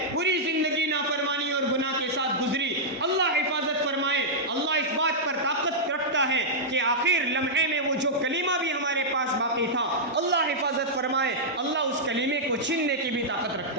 پوری زندگی نافرمانی اور گناہ کے ساتھ گزری، اللہ حفاظت فرمائے۔ اللہ اس بات پر طاقت رکھتا ہے کہ آخر لمحے میں وہ جو کلمہ بھی ہمارے پاس باقی تھا اللہ حفاظت فرمائے، اللہ اس کلمے کو چھیننے کی بھی طاقت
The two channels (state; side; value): normal; both; correlation -0.08